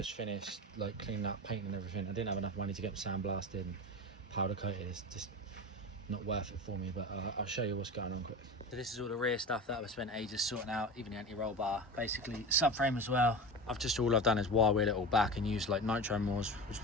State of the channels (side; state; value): both; normal; correlation 0.28